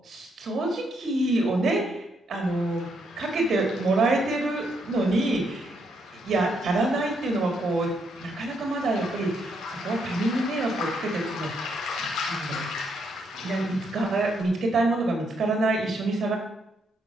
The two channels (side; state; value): both; normal; correlation 0.76